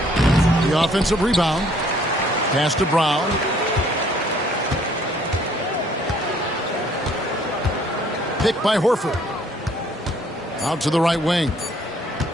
The offensive rebound. Pass to Brown. Picked by Horford. Out to the right wing.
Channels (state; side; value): normal; both; correlation 0.61